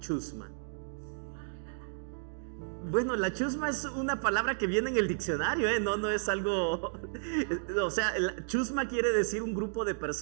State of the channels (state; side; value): silent; left; digital silence